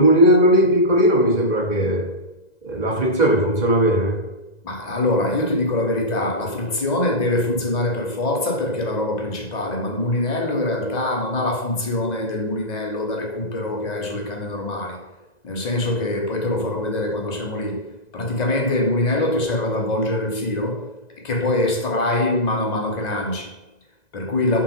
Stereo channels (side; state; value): right; late; 2.0 ms